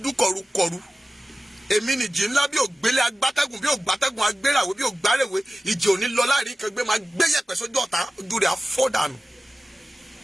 dún kọrukọru. Èmi nìjì ńlá bí ògbélé agbátẹ́gùn, bí ògbátẹ́gùn agbéràwé, bí ògbárèwé. Ìjì òní lọ láàrin kan gbé máa gbé yẹ̀pẹ̀ sójú ọ̀tá, ojú rẹ̀ á fọ́ dànù.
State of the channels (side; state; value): both; normal; correlation 0.96